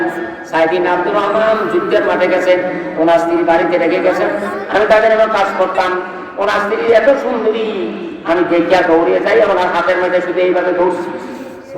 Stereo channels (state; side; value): identical; both; correlation 1.00